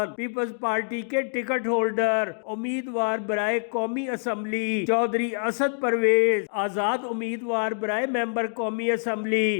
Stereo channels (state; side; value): silent; right; digital silence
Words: پیپلز پارٹی کے ٹکٹ ہولڈر امیدوار برائے قومی اسمبلی چودھری اسد پرویز، آزاد امیدوار برائے ممبر قومی